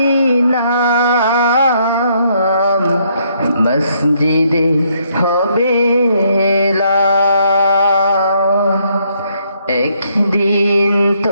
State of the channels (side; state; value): both; inverted; correlation -0.71